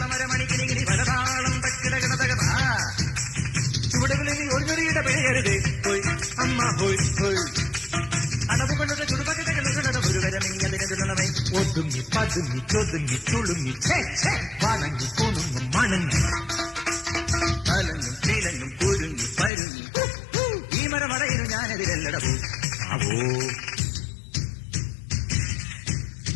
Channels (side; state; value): right; drops out; at 19.5 s